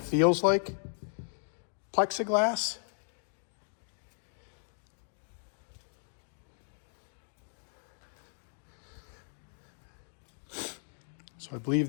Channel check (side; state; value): right; silent; 54 dB below the other